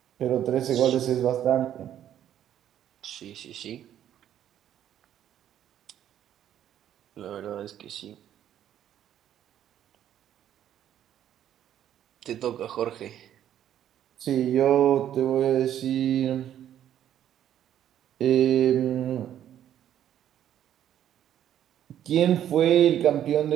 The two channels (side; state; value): left; quieter; 10.8 dB